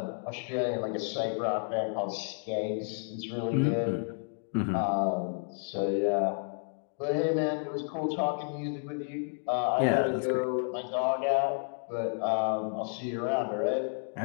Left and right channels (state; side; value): silent; right; 57 dB below the other